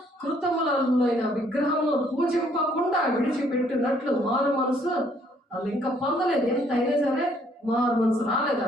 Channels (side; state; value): both; normal; correlation 0.65